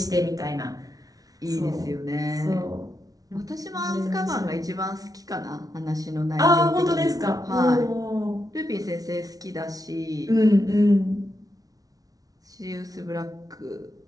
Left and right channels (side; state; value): left; late; 0.18 ms